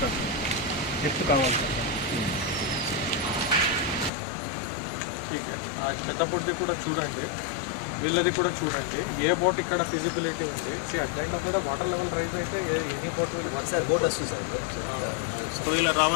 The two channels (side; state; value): right; drops out; at 4.1 s